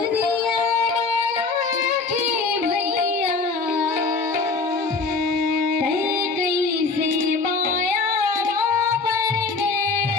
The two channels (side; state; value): right; quieter; 4.2 dB